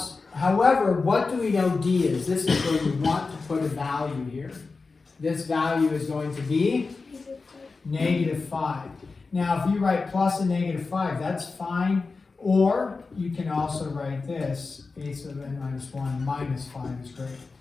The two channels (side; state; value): right; quieter; 4.2 dB